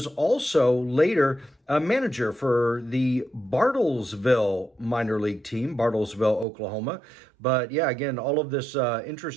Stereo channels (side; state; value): left; drops out; at 6.5 s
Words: also later a manager for the Bartlesville minor league team, Bartlesville, Oklahoma. But yeah, again, all of this